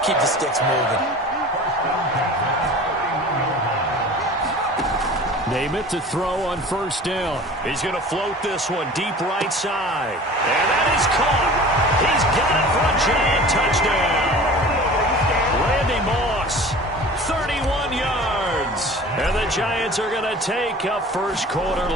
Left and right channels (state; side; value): normal; both; correlation 0.41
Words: Keep the sticks moving. Name it to throw on 1st down. He's going to float this one deep right side. And that is caught. He's got it for a giant touchdown. Randy Moss, 31 yards. And the Giants are going to take a first quarter